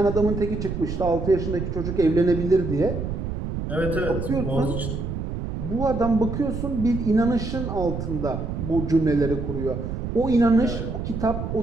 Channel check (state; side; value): noise; right; rumble, 4 dB below the sound